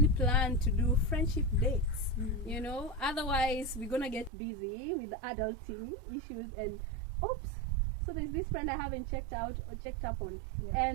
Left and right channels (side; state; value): left; drops out; at 4.3 s